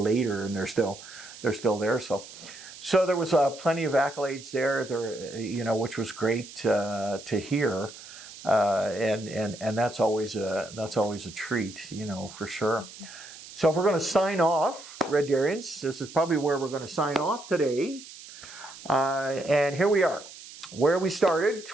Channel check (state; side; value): noise; right; hiss, 16 dB below the sound